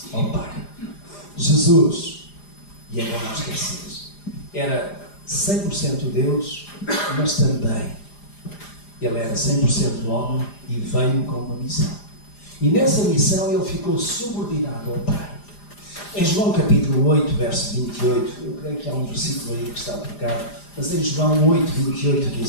ao Pai. Jesus, e é bom não esquecer, era 100% Deus, mas também ele era 100% homem e veio com uma missão. E nessa missão ele ficou subordinado ao Pai. Em João capítulo 8, verso 28, eu creio que há um versículo aí que está trocado, mas em João 8, 28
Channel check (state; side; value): late; right; 4.9 ms